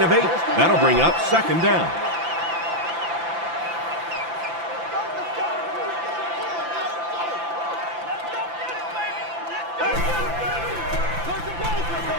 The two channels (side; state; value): left; late; 5.9 ms